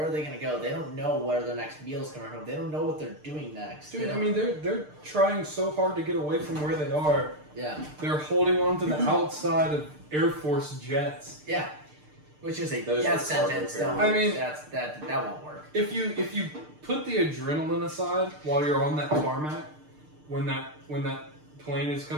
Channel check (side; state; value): left; late; 6.6 ms